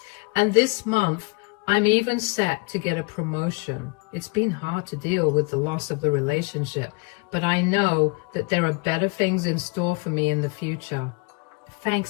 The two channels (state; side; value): quieter; right; 30.5 dB